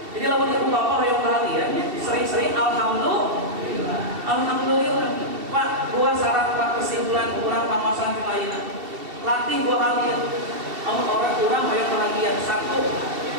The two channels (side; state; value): left; late; 2.7 ms